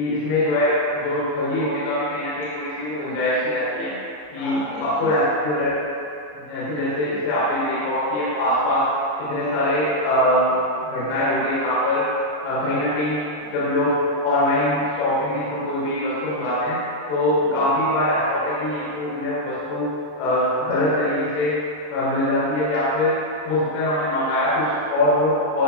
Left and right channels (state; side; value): late; right; 33 ms